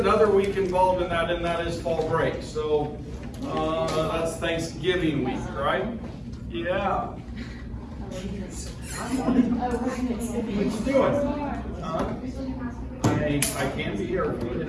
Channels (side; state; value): both; identical; correlation 1.00